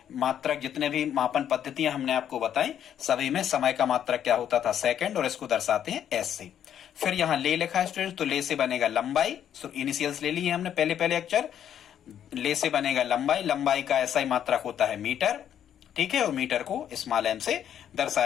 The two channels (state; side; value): quieter; right; 9.7 dB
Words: मात्रक जितने भी मापन पद्धतियां हमने आपको बताई, सभी में समय का मात्रक क्या होता था? सेकंड। और इसको दर्शाते हैं S से। फिर यहाँ ले लिखा है स्टूडेंट्स, तो ले से बनेगा लंबाई। सो इनिशियल्स ले लिए हमने पहले अक्षर। ले से बनेगा लंबाई, लंबाई का ऐसा ही मात्रक होता है मीटर। ठीक है, और मीटर को स्मॉल m से